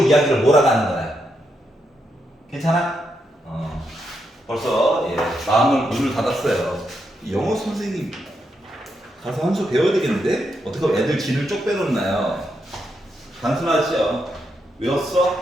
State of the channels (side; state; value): both; normal; correlation 0.82